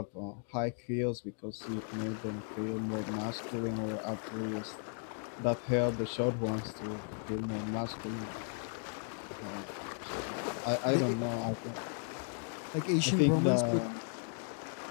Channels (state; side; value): silent; right; 54 dB below the other